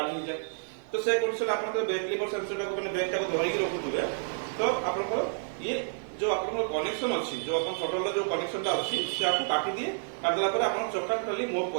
हो जाए तो से कंडीशन आपण ब्रेक लीवर सेंसर को माने ब्रेक को धरि के रखुथुबे तो आपण को ये जो आपण कनेक्शन अछि जो आपण शटल जो कनेक्शन ता अछि से आपको काटी दिए काट देला पर आपण चक्का टोटली मूव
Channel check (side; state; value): left; silent; digital silence